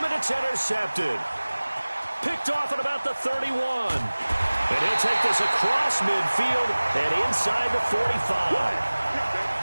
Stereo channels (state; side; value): inverted; both; correlation -1.00